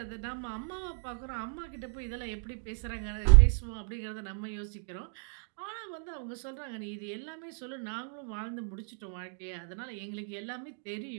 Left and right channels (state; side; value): silent; left; 56 dB below the other